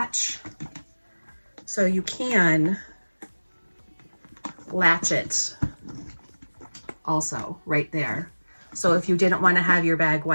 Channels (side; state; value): both; inverted; correlation -1.00